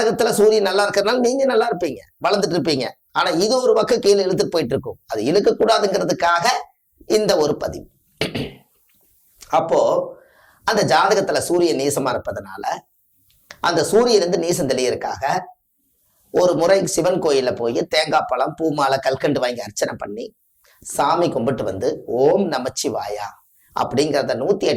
சூரியன் நல்லா இருக்கிறதுனால நீங்க நல்லா இருப்பீங்க, வளர்ந்துட்டு இருப்பீங்க. ஆனா இது ஒரு பக்கம் கீழே இழுத்துட்டு போயிட்டு இருக்கும். அது இழுக்கக்கூடாதுங்கிறதுக்காக இந்த ஒரு பதிவு. அப்போ அந்த ஜாதகத்துல சூரியன் நீசமா இருப்பதனால அந்த சூரியன் நீசம் தெளியறதுக்காக ஒரு முறை சிவன் கோயில்ல போய் தேங்காய் பழம் பூ மாலை கல்கண்டு வாங்கி அர்ச்சனை பண்ணி சாமி கும்பிட்டு வந்து ஓம் நமச்சிவாயா அப்படிங்கிறத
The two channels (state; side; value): identical; both; correlation 1.00